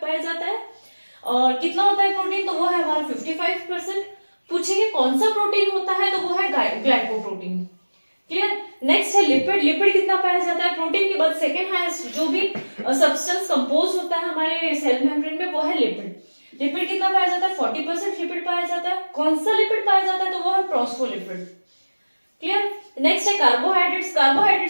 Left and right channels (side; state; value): both; inverted; correlation -1.00